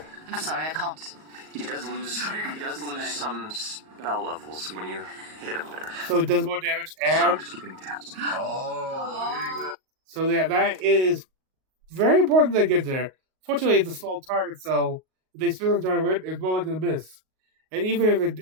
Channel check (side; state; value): left; late; 38 ms